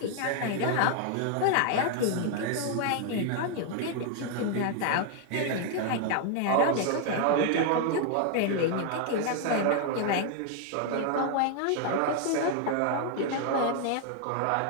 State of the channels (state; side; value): different; both; correlation 0.00